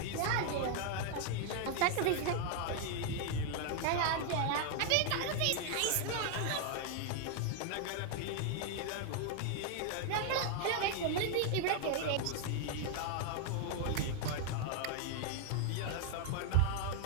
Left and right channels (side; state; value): both; different; correlation 0.00